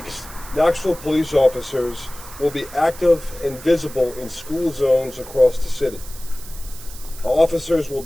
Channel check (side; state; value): right; noise; hiss, 16 dB below the sound